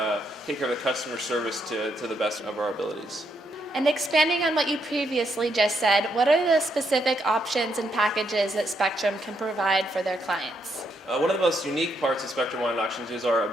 customer service to the best of our abilities. And expanding on what you previously just said, what are the specific options and packages that Spectrum can provide for their clients? One of the most unique parts of Spectrum Wine Auctions is our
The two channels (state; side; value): normal; both; correlation 0.77